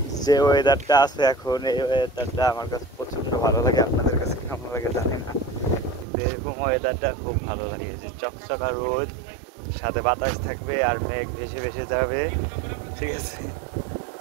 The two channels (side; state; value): left; drops out; at 6.1 s